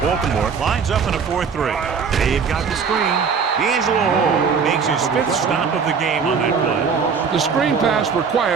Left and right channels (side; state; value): left; quieter; 5.9 dB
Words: lines up in a 4-3. They've got the screen. D'Angelo Hall makes his 5th stop of the game on that play. The screen pass